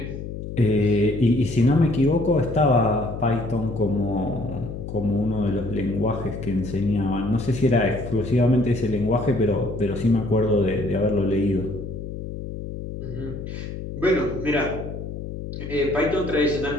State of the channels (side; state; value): left; noise; hum, 8 dB below the sound